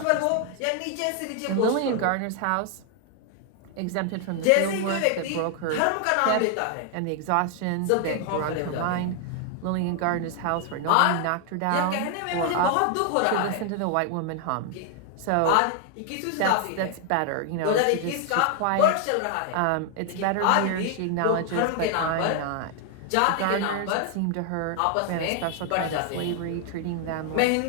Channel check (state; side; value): different; both; correlation 0.00